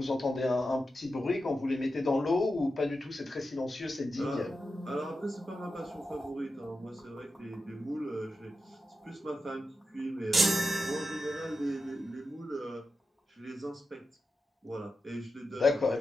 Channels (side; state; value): both; normal; correlation 0.90